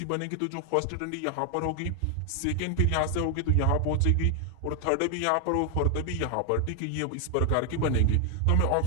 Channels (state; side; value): different; both; correlation 0.00